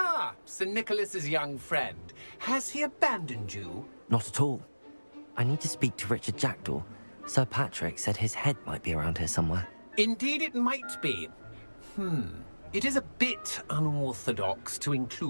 Sir Nicholas's young friend. Has he abandoned you? Not at all. I need to speak to Richard Jackdaw. Sir Patrick said his head might be around here somewhere. Indeed it might be. It is a bit unorthodox to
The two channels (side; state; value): both; inverted; correlation -1.00